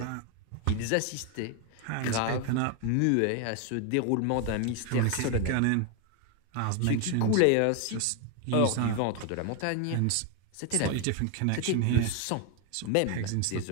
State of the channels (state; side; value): different; both; correlation 0.01